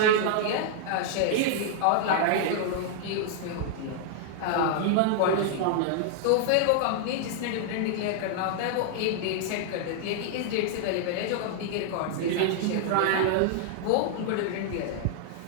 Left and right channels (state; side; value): different; both; correlation 0.00